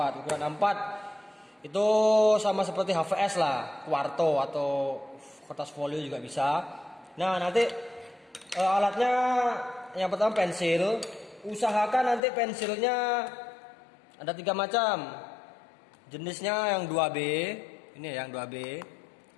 ukuran A4 itu sama seperti HVS lah, kuarto atau kertas folio juga bisa. Nah, nanti alatnya yang pertama pensil. Usahakan nanti pensilnya ada 3 macam. Jenisnya yang 2B, ini yang 2B.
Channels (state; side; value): drops out; right; at 12.2 s